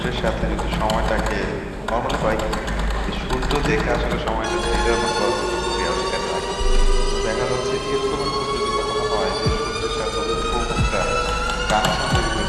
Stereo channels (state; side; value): identical; both; correlation 1.00